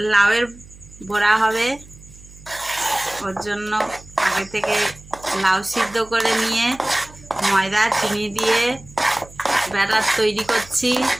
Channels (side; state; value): right; noise; hum, 21 dB below the sound